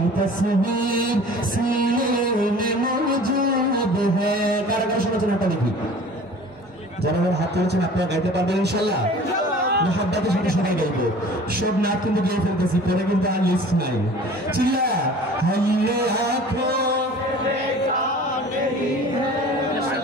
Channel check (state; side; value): normal; both; correlation 0.45